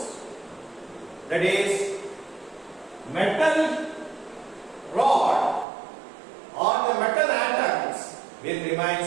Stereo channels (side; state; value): left; drops out; at 5.7 s